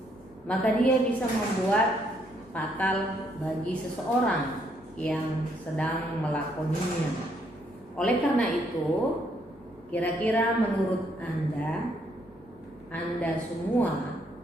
maka dia bisa membuat fatal bagi seseorang yang sedang melakoninya. Oleh karena itu, kira-kira menurut Anda semua,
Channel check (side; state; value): both; normal; correlation 0.71